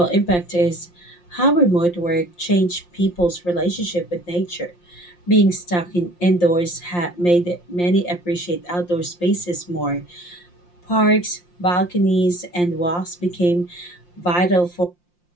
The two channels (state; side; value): late; right; 5.7 ms